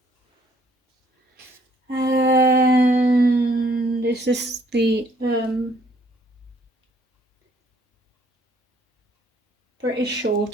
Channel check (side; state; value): both; normal; correlation 0.64